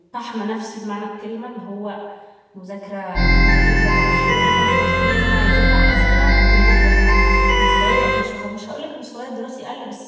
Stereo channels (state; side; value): identical; both; correlation 1.00